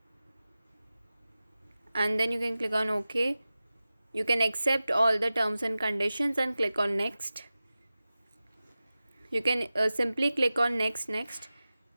and then you can click on OK. You can accept all the terms and conditions and click on next. You can simply click on next.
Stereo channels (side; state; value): both; inverted; correlation -0.95